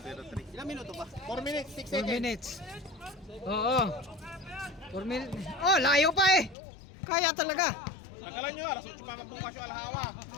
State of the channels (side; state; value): right; drops out; at 6.6 s